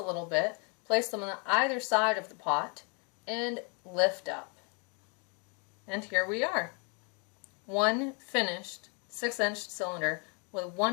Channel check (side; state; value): right; quieter; 35.3 dB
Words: little bit, place them on either side of the pot, and lift up. And here we are. One finished 6-inch cylinder with